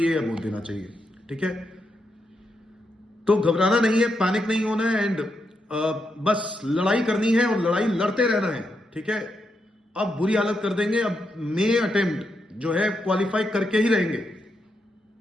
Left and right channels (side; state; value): both; normal; correlation 0.82